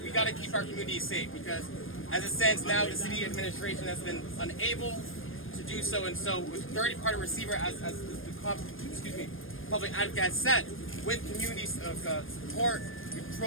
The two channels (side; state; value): right; late; 0.59 ms